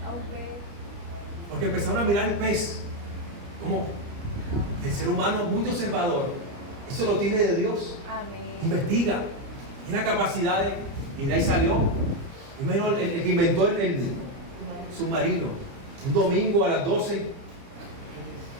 Porque empezaron a mirar el pez como el ser humano muy observador. Eso lo tiene de Dios. Investiga, tiene capacidades y de ahí salió. Primero el que inventó el submarino, un domingo a las 12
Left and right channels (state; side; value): late; left; 30 ms